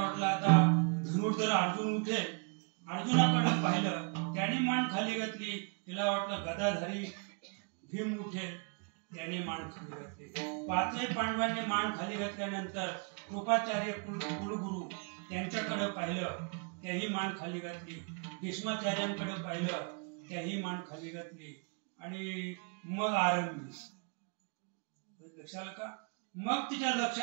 आता धनुर्धर अर्जुन उठेल. अर्जुनाकडे पाहिलं, त्याने मान खाली घातली. तिला वाटलं गदाधारी भीम उठेल, त्याने मान खाली घातली. पाचही पांडवांनी मान खाली घातल्यानंतर कृपाचार्य कुलगुरू त्यांच्याकडे पाहिलं, त्याही मान खाली घातली. भीष्माचार्यांकडे पाहिलं, त्याही मान खाली घातली. आणि मग आरंभी. लक्षात आलं का? मग तिच्या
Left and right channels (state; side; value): quieter; left; 38.2 dB